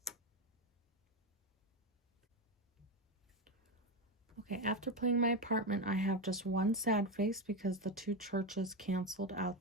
Okay, after playing my apartment, I have just one sad face because the 2 churches canceled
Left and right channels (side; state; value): both; normal; correlation 0.13